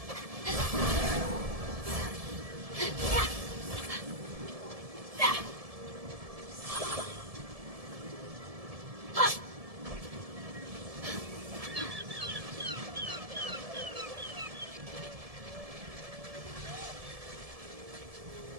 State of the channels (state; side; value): late; left; 1.7 ms